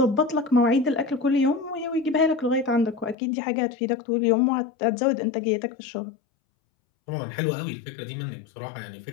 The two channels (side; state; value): right; drops out; at 3.2 s